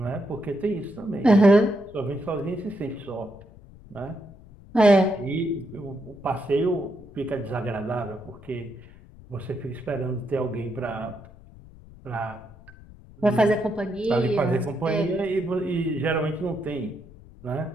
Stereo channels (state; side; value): noise; left; rumble, 21 dB below the sound